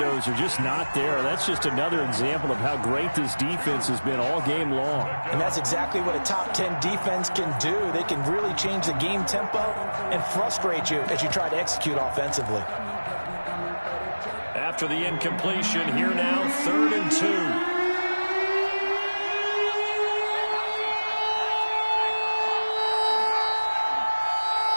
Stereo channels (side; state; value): both; inverted; correlation -1.00